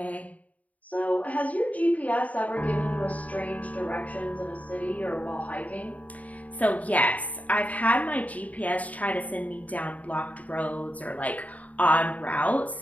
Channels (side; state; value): right; late; 0.071 ms